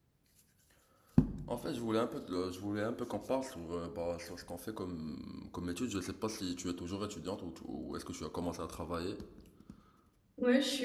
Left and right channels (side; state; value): both; identical; correlation 1.00